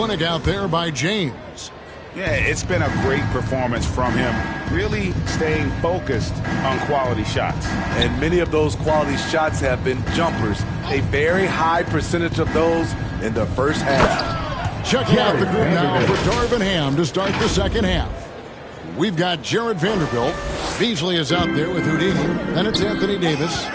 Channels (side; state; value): both; identical; correlation 1.00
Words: out there by James. Yeah, it's been a great performance from him, really staying focused on quality shots. And many of those quality shots have been jumpers, a very high percentage of those in the first half. Check out the group now for Darvin Ham to start the second half. We've got Jared Vanderbilt. Beasley is out there with Houdini. Then it's Anthony Davis.